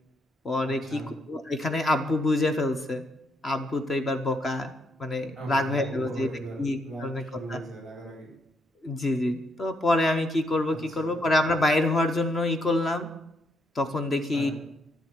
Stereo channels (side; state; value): both; normal; correlation 0.76